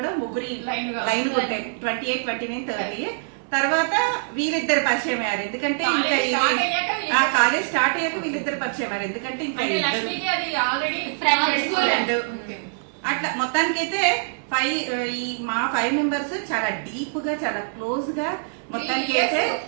ముగ్గురి లైన్ కొట్టాయి. 28, 29, 30. తర్వాత వీళ్ళిద్దరు పరిచయం అయ్యారు. ఎందుకంటే ఇంకా కాలేజ్ స్టార్ట్ అయ్యాక వీళ్ళిద్దరు పరిచయం అయ్యారు. ఎందుకంటే ఇంకా అట్లా మొత్తానికైతే మా 5 members చాలా డీప్ గా, చాలా క్లోజ్ గా మొత్తానికి అయితే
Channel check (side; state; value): left; silent; digital silence